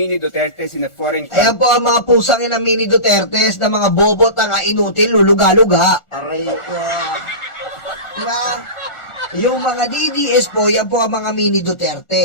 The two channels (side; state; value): right; late; 1.4 ms